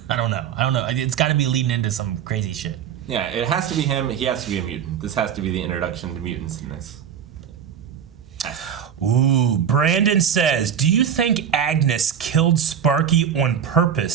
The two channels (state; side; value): quieter; left; 8.3 dB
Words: I don't know. It's got to be leading into some crazy shit. Yeah, it has to be him. He has to be a mutant. This has to be the introduction to mutants in this. Ooh, Brandon says, do you think Agnes killed Sparky on